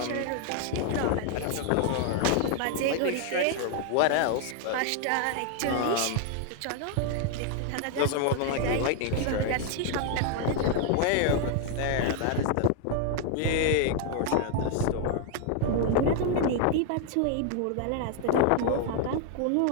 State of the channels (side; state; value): both; different; correlation 0.00